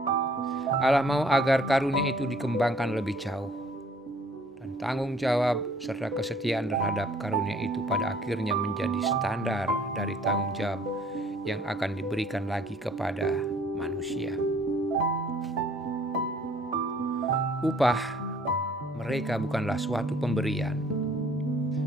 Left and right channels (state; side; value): normal; both; correlation 0.58